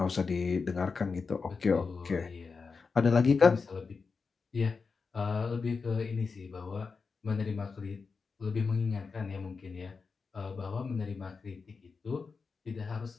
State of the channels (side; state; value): right; quieter; 4.9 dB